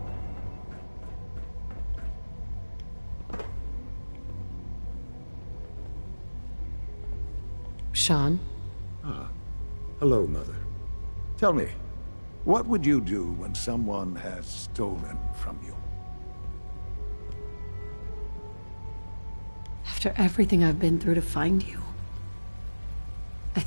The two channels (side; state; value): both; inverted; correlation -1.00